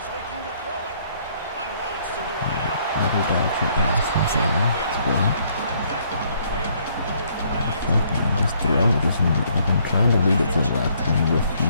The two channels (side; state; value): both; inverted; correlation -0.66